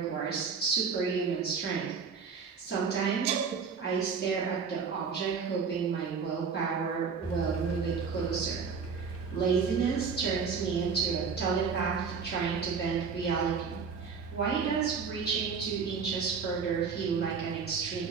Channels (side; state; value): left; quieter; 5.7 dB